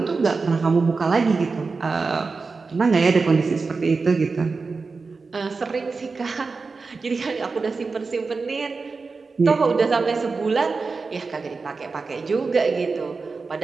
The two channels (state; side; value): quieter; left; 4.3 dB